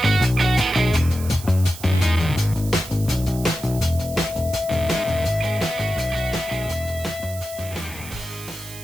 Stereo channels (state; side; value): noise; right; hiss, 14 dB below the sound